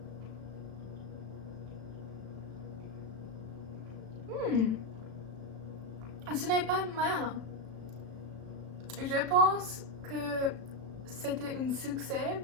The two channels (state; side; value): late; left; 36 ms